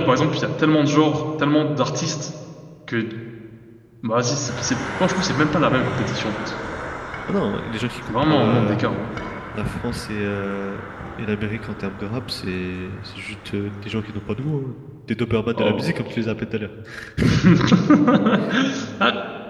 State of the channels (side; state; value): both; identical; correlation 1.00